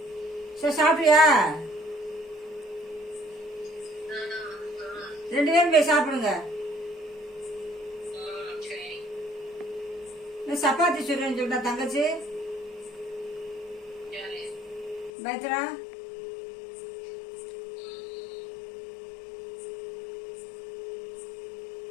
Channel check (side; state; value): right; drops out; at 15.1 s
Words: சரி, சாப்பிட்டியா? 2 பேரும் போய் சாப்பிடுங்க. சப்பாத்தி சுடுறேன்னு சொல்லிட்டா தங்கச்சி பயத்ரா.